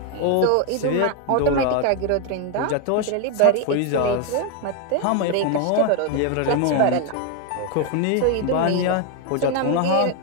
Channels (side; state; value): both; different; correlation 0.01